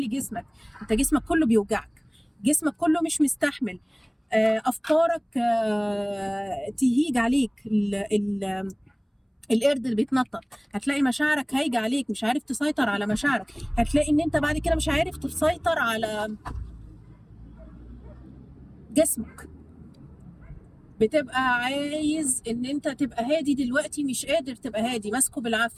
جسمك. انت جسمك كله بيوجعك، جسمك كله مش مستحمل، افكارك تهيج عليك، القرد اللي بيتنطط. هتلاقي مشاعرك هايجه عليك، مش عارف تسيطر على مشاعرك. هتلاقي ان انت بعد كده مش عارف تسيطر على جسمك. بتبقى عايز ان انت تبقى هادي دلوقتي، مش قادر تبقى هادي، ماسكه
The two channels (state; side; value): identical; both; correlation 1.00